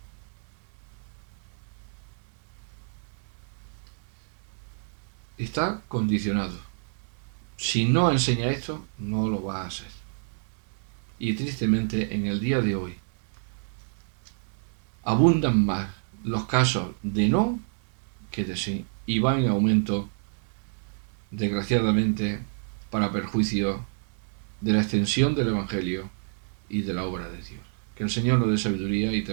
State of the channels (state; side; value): silent; left; 59 dB below the other